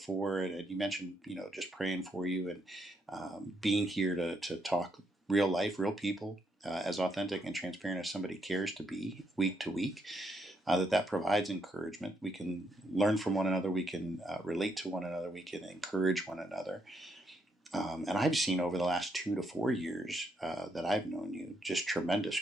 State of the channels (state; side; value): normal; both; correlation 0.76